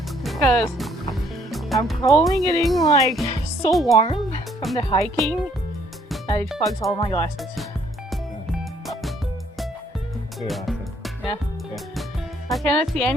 because I'm probably getting like so warm from the hiking that it fogs all my glasses. Yeah. I cannot see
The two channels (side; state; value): both; normal; correlation 0.65